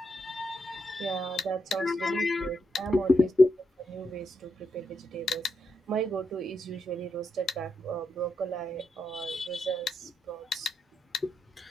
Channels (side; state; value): both; normal; correlation 0.82